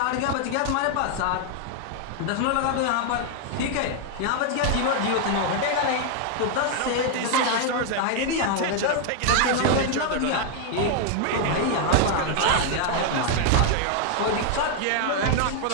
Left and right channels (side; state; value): both; different; correlation 0.00